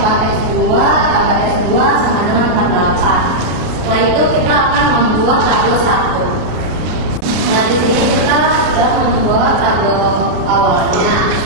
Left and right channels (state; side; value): late; left; 33 ms